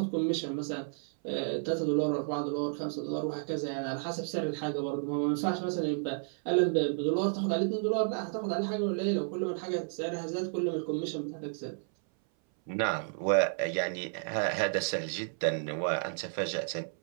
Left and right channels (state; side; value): silent; left; 57 dB below the other